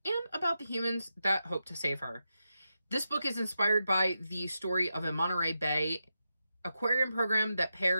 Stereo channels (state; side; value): inverted; both; correlation -0.88